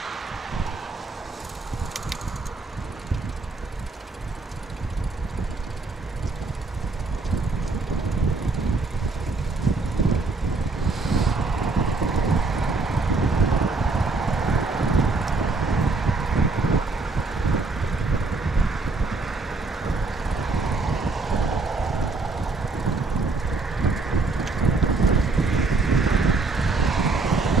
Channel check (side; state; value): left; quieter; 3.7 dB